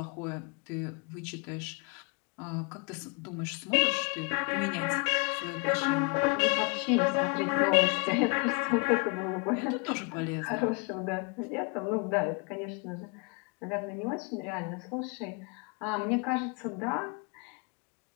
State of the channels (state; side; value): quieter; right; 30.1 dB